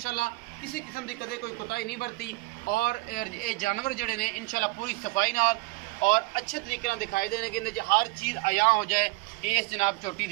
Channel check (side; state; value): left; quieter; 23.1 dB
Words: किसी किस्म की कदे कोई कोताही नहीं बरती। और ये जानवर जड़े ने इंशाल्लाह पूरी सफाई नाल और अच्छे तरीके नाल दिखाई देने कि हर चीज़ आया हो जाए। इस जनाब चोटी